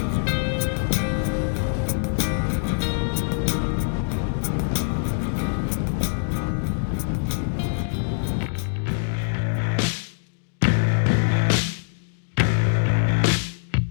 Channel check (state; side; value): silent; right; digital silence